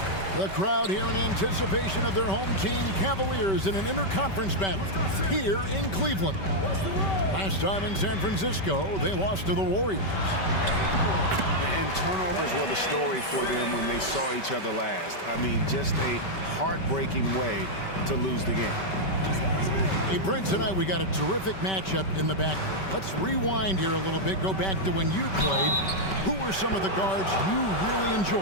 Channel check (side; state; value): right; late; 5.2 ms